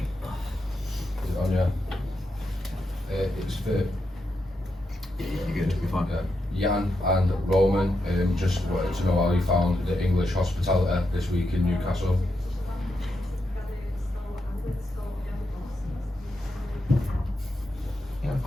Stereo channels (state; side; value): normal; both; correlation 0.85